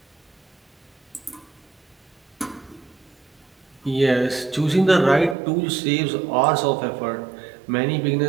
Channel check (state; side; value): drops out; left; at 5.4 s